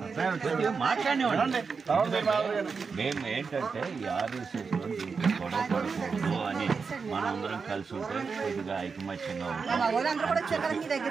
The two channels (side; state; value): left; quieter; 5.2 dB